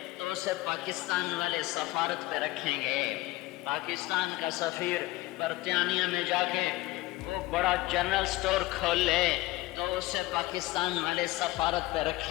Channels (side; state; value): right; quieter; 19.1 dB